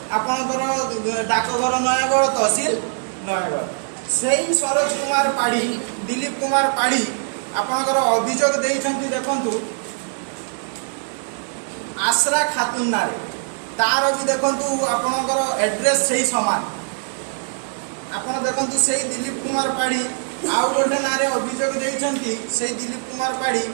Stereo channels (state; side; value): silent; left; 61 dB below the other